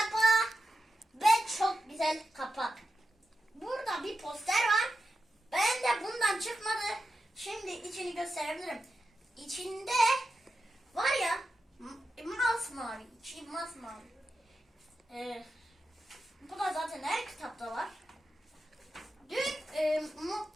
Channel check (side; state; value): both; normal; correlation 0.89